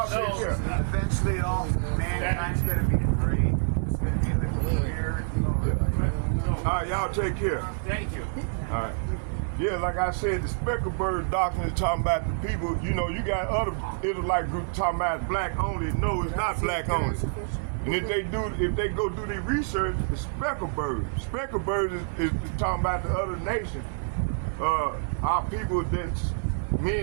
take care. Eventually, all mankind's gonna be free. It's gonna be the clear. All right, y'all take care. Thank you. All right. Yeah, like I said, the speckled bird doctrine is talking about the people. You know, you got other Israelite groups talking about black only. No, it's not black only. And if they go do their research, it's speckled birds. Speckled birds is talking about the other nations. Our people that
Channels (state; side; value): silent; left; digital silence